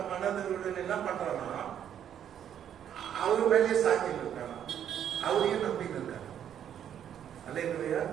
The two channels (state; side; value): quieter; left; 9.6 dB